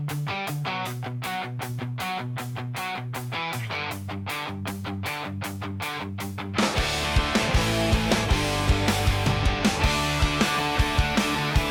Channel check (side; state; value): both; identical; correlation 1.00